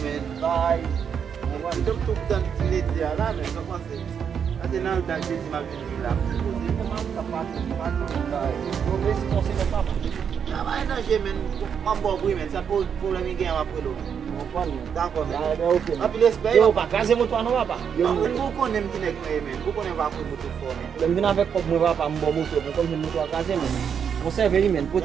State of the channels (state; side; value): quieter; left; 7.4 dB